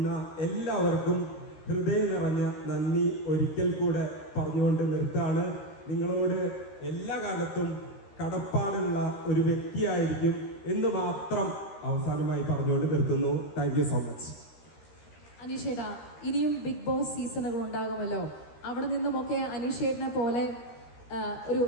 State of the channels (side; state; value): right; late; 13 ms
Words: എല്ലാവർക്കും ഹൃദയം നിറഞ്ഞ നന്ദി ഒരിക്കൽ കൂടെ പറഞ്ഞുകൊണ്ട് നിർത്താണ്. നിങ്ങളോട് എല്ലാ കാലത്തും കടപ്പാടുള്ള ഒരു വ്യക്തിയായിരിക്കും എന്ന് മാത്രം അവസാനമായി പറഞ്ഞുകൊണ്ട് നിർത്തുന്നു. Thank you so much. അനീഷേട്ടാ, ഇനിയും ബിഗ് ബോസ് സീസണുകൾ ഉണ്ടാകുമല്ലോ. അവിടെ നിന്നുമൊക്കെ അനീഷേട്ടനെ പോലെ ഒരു